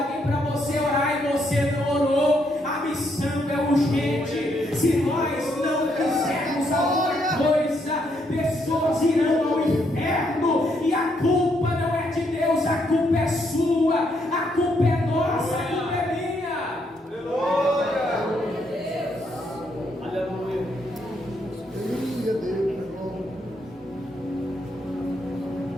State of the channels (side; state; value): both; normal; correlation 0.75